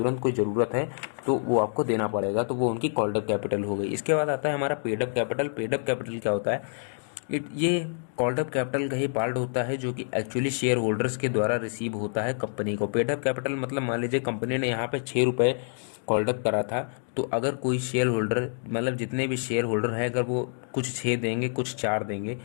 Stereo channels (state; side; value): silent; right; digital silence